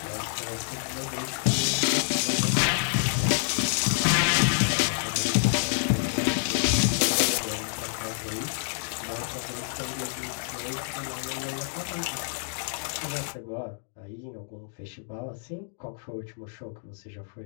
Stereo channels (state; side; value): silent; right; digital silence